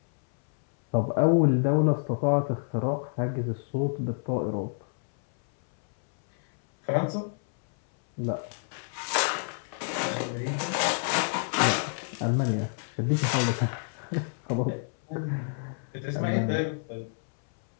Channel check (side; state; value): right; silent; 59 dB below the other